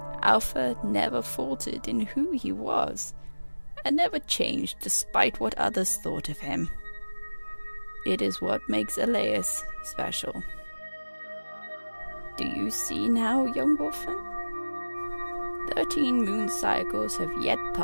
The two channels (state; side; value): inverted; both; correlation -1.00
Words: Alpha never faltered in who he was, and never changed despite what others thought of him. It is what makes Elias special. Do you see now, young Wolfen? 13 moon cycles have yet